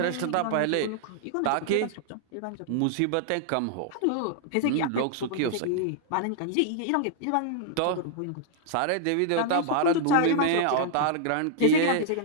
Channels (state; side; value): different; both; correlation -0.01